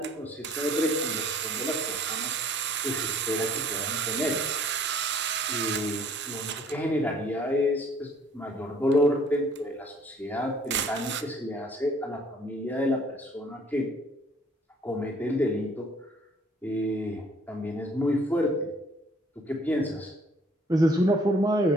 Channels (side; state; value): both; normal; correlation 0.58